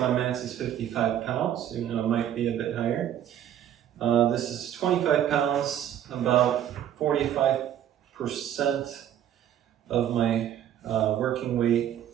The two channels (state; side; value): quieter; left; 10.6 dB